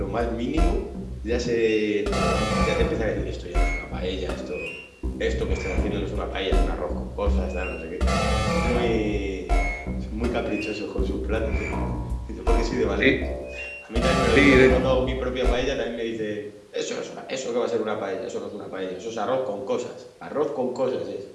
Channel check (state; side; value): identical; both; correlation 1.00